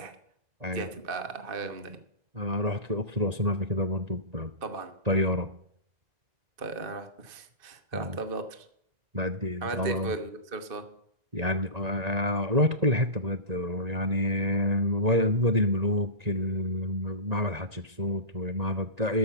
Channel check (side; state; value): left; late; 1.9 ms